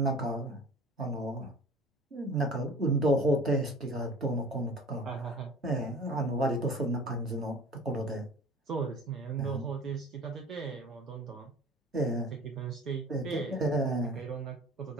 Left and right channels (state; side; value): normal; both; correlation 0.43